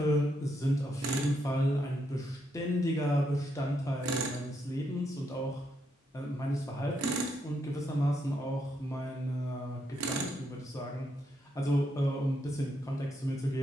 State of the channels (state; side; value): normal; both; correlation 0.78